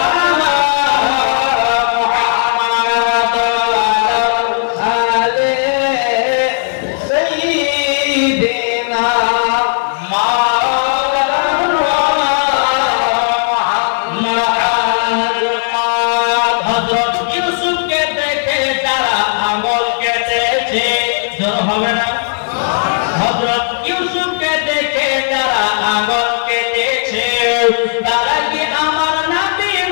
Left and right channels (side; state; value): right; silent; digital silence